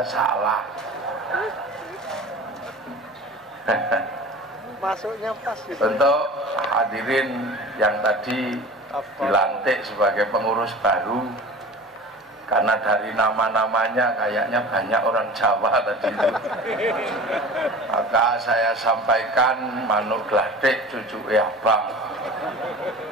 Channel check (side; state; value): both; normal; correlation 0.38